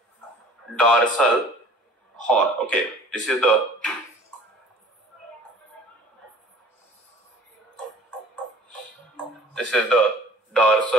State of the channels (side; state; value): both; normal; correlation 0.48